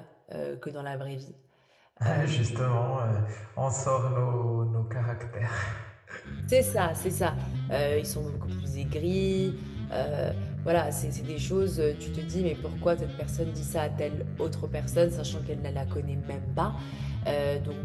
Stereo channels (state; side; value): identical; both; correlation 1.00